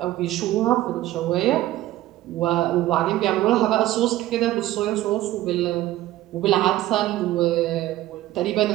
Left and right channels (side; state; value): left; quieter; 15.3 dB